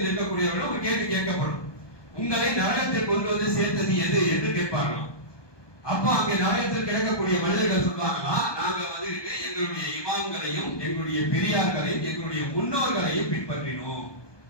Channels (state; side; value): late; right; 1.2 ms